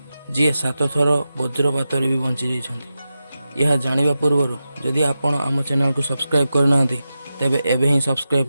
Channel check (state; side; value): inverted; both; correlation -0.91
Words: जी 7 थर वज्रपात भी बंची जाइछन्ति यह जानिबा पूर्व जदि आपण आम चैनल को सब्सक्राइब करना तेबे एबे ही सब्सक्राइब